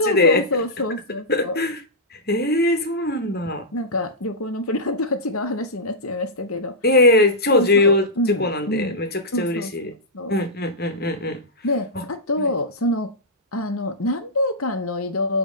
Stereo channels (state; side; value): normal; both; correlation -0.11